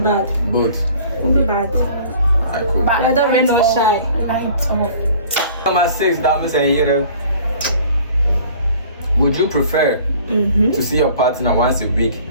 Both. Won't be bad. Alright, cool. Whether rain or shine. Light off. Number 6, dames and here. Would you prefer to see your partner once a week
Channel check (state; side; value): inverted; both; correlation -0.50